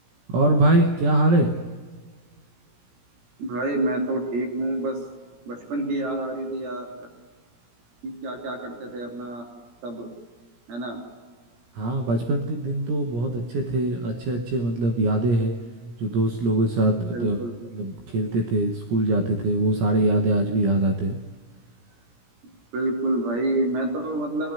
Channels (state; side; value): late; left; 17 ms